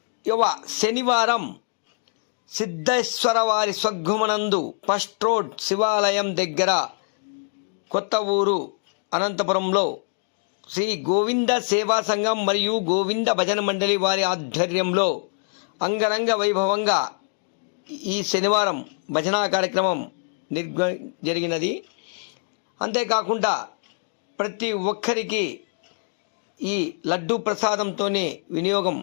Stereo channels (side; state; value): right; silent; 62 dB below the other